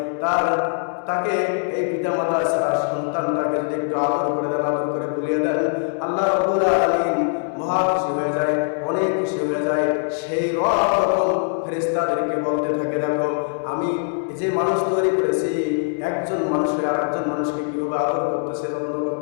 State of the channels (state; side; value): silent; right; 64 dB below the other